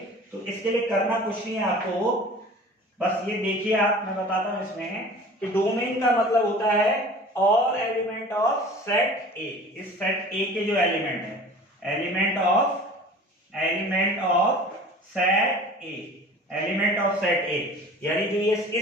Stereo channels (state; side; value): normal; both; correlation 0.43